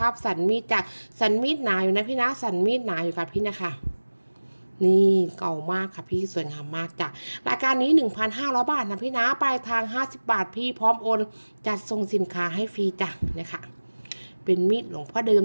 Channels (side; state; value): both; inverted; correlation -1.00